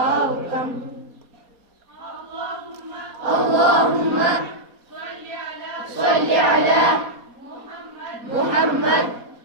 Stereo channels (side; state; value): left; late; 4.2 ms